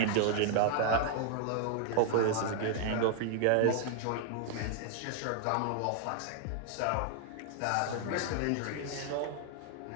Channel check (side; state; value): both; different; correlation 0.00